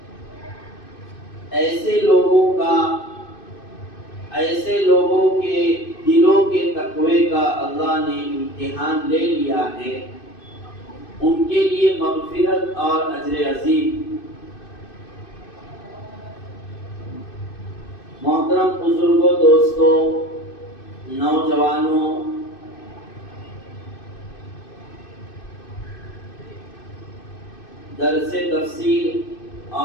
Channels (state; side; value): late; right; 2.6 ms